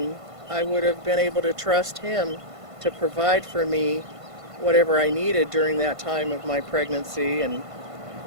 I would have been able to trust Him to provide for me whatever I needed during that time of my pregnancy and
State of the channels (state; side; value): late; left; 1.5 ms